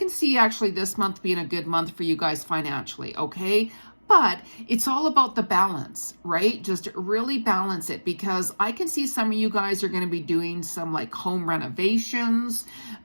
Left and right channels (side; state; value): both; inverted; correlation -1.00